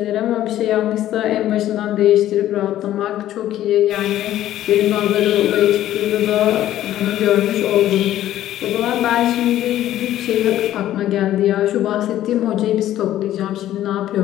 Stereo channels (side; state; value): right; quieter; 12.9 dB